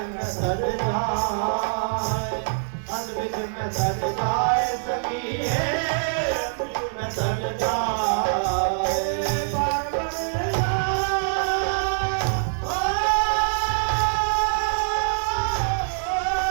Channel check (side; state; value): left; silent; digital silence